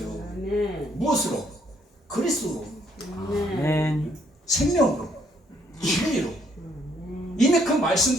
아멘. 무엇으로? 그리스도로, 아멘. 생명으로, 진리로. 이미 그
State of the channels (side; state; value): both; normal; correlation 0.68